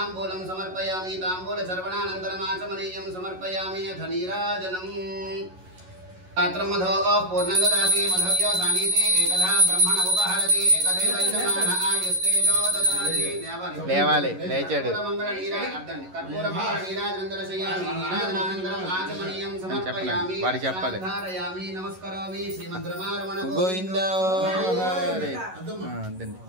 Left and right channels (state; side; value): late; left; 11 ms